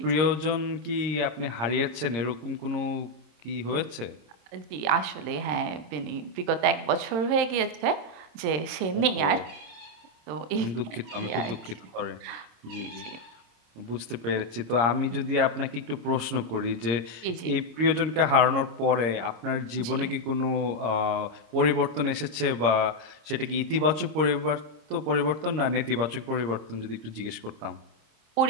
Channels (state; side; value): late; left; 26 ms